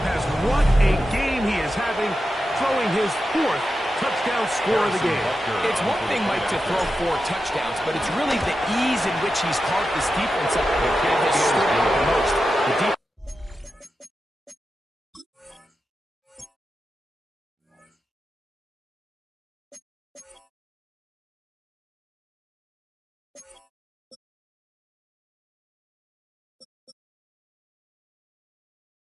pass. What a game he is having, throwing his 4th touchdown score of the game. It's one thing, Mike, to throw 4 touchdowns, but it's really the ease in which he's carved this defense up that has stood out the most. The defense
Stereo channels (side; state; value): both; normal; correlation 0.90